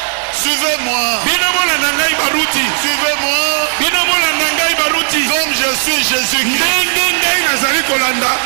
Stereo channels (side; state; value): left; silent; digital silence